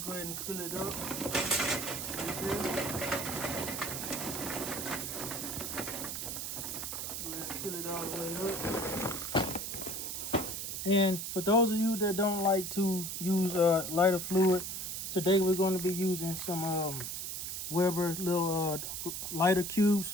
go ahead and fill it up. Right there. Go ahead and fill it all the way up. And for those of you that don't like to use lighter fluid, today we're going to be using some Weber little lighter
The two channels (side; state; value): right; noise; hiss, 4 dB below the sound